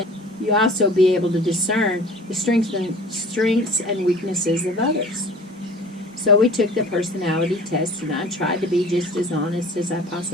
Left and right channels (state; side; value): normal; both; correlation 0.44